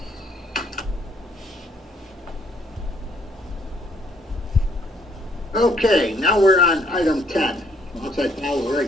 Okay, now we're on item 10. Once I follow the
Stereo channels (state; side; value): normal; both; correlation 0.66